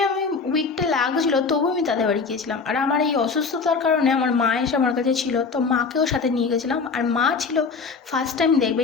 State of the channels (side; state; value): right; quieter; 4.9 dB